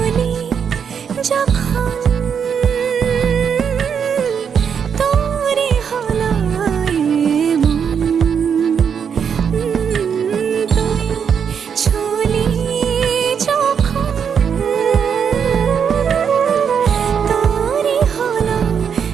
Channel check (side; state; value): left; quieter; 7.2 dB